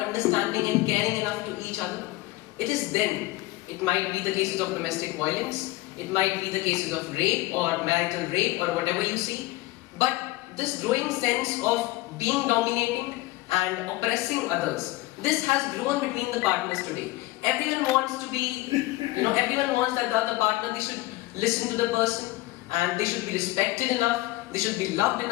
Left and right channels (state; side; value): quieter; right; 19.1 dB